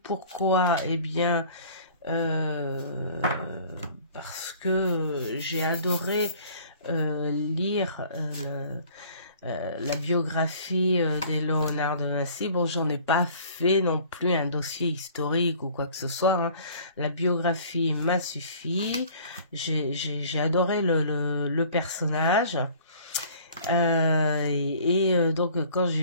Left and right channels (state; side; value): inverted; both; correlation -0.51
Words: pourquoi? Eh bien, parce que j'ai adoré lire la biographie de Léonard de Vinci. Bon, j'en ai pas fait non plus un dossier historique ou quoi que ce soit, hein. La biographie m'a suffi. J'ai adoré le personnage. Donc, quand j'ai